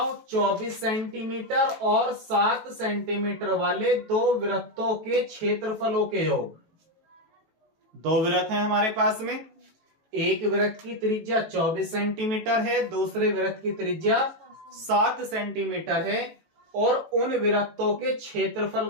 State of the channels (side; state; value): left; late; 18 ms